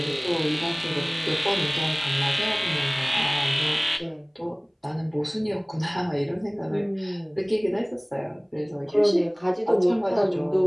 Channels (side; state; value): both; identical; correlation 1.00